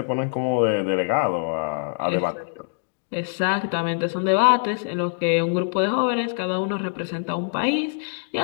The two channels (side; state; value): right; silent; digital silence